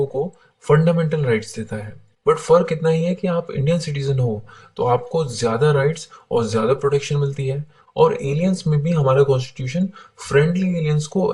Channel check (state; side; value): identical; both; correlation 1.00